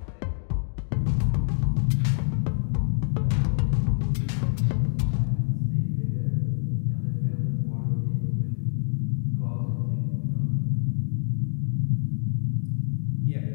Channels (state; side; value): silent; right; digital silence